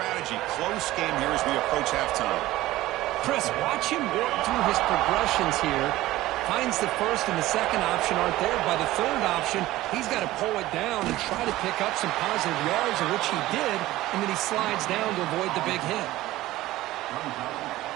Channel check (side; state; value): left; quieter; 16.6 dB